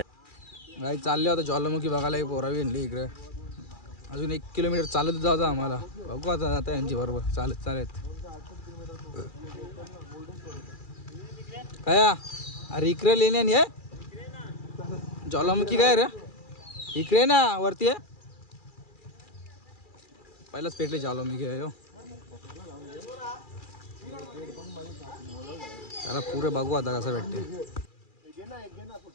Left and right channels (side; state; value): right; late; 2.4 ms